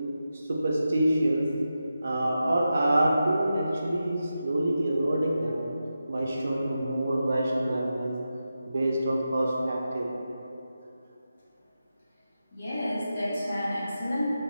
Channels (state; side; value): inverted; both; correlation -0.90